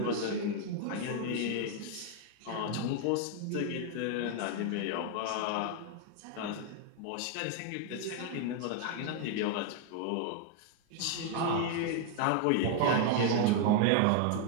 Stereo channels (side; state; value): both; different; correlation 0.00